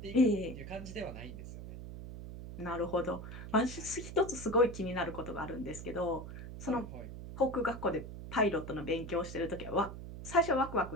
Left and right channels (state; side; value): noise; right; hum, 10 dB below the sound